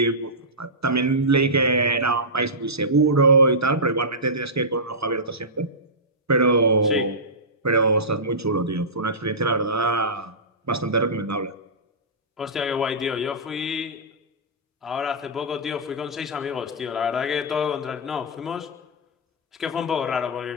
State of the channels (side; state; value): both; normal; correlation -0.16